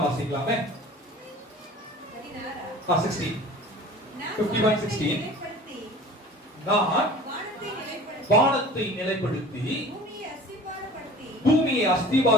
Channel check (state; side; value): normal; both; correlation 0.43